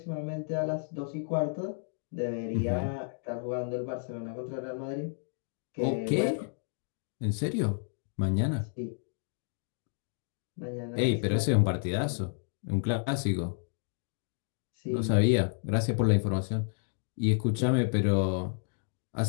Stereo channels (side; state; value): right; silent; digital silence